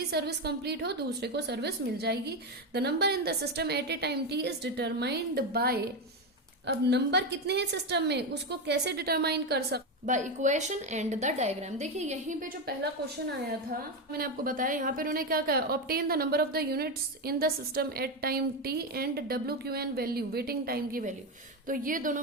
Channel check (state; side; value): normal; both; correlation 0.12